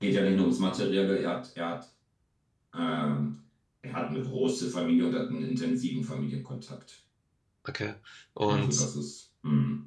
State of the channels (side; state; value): both; identical; correlation 1.00